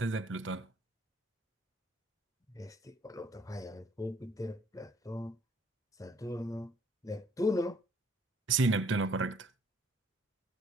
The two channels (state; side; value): normal; both; correlation 0.62